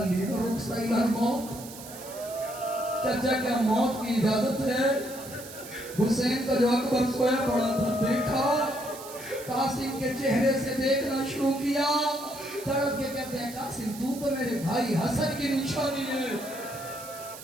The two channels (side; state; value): right; noise; hiss, 14 dB below the sound